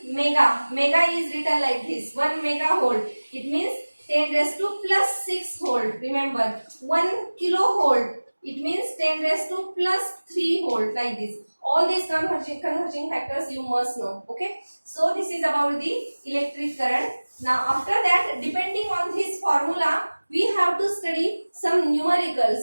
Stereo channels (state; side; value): inverted; both; correlation -1.00